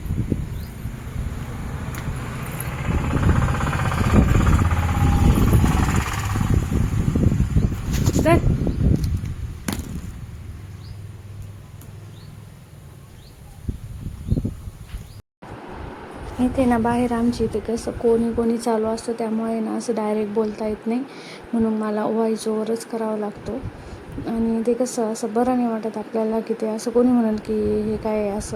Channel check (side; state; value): both; identical; correlation 1.00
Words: इथे ना बाहेर आमची इथे कसं कोणी चालू असतं, त्यामुळे ना असं डायरेक्ट बोलता येत नाही. म्हणून मला व्हॉइस ओव्हरच करावा लागतो. आणि ते कसं असं बरं नाही वाटत आपल्याला की ते असं कोणी म्हणेल की हे काय